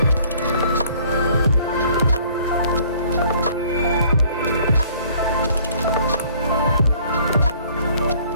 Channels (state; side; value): inverted; both; correlation -0.57